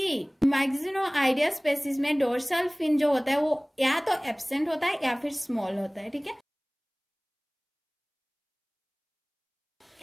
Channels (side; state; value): both; identical; correlation 1.00